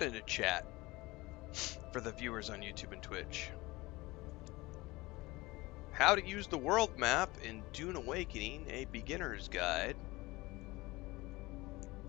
into chat for the viewers on YouTube and Twitch. How to use the world map in Dune Awakening, a beginner's guide.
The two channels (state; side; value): quieter; right; 21.2 dB